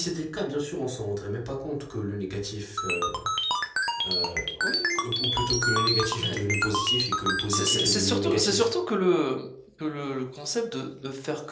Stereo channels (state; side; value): identical; both; correlation 1.00